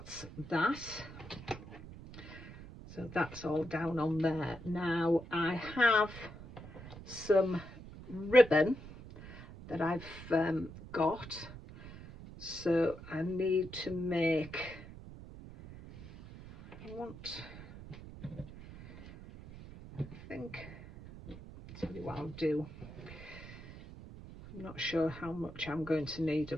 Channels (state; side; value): noise; right; rumble, 14 dB below the sound